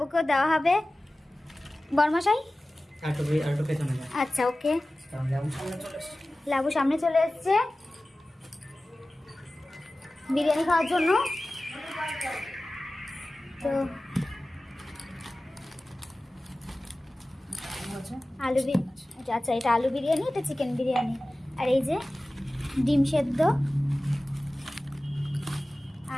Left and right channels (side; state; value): both; normal; correlation 0.96